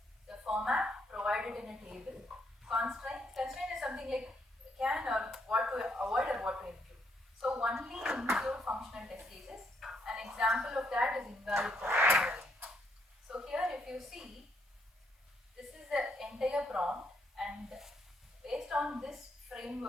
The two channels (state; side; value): normal; both; correlation 0.73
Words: The format, provided in a table. Constraint is something like can or what to avoid or what to include. So only include functional test cases. An example of that is invalid customer ID. So here if you see, this is the entire prompt, and based on this